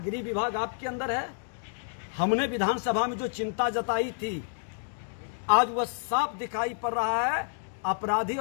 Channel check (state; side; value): silent; right; digital silence